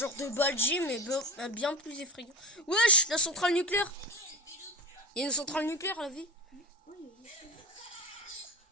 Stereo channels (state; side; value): normal; both; correlation 0.26